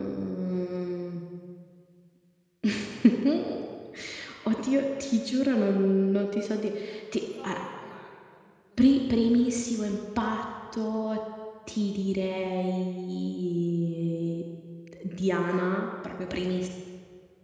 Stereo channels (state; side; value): identical; both; correlation 1.00